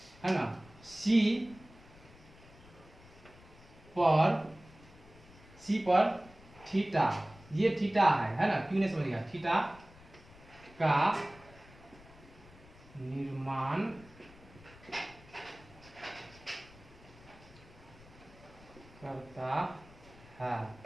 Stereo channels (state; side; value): noise; left; rumble, 22 dB below the sound